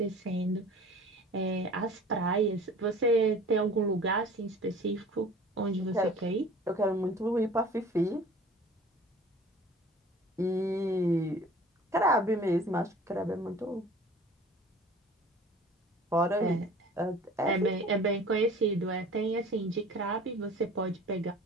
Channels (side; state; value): both; normal; correlation 0.45